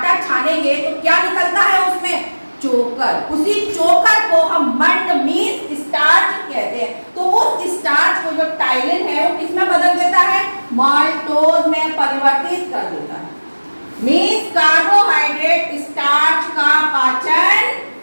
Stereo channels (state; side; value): inverted; both; correlation -1.00